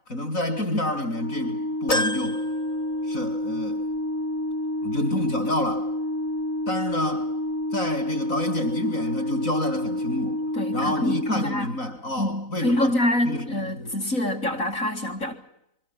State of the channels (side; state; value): right; late; 4.0 ms